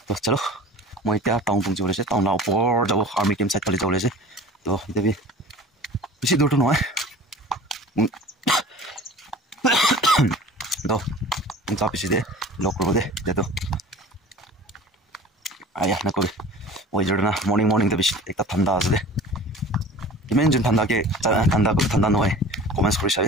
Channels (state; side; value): normal; both; correlation 0.41